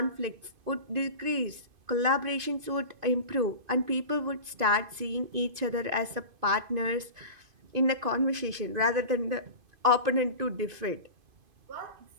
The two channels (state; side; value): late; left; 2.5 ms